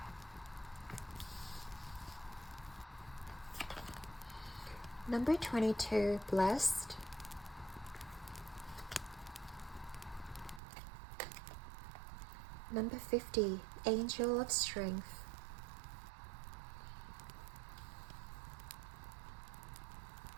Number 22, blessed. Number 50, angel of strength.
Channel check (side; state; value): left; drops out; at 10.6 s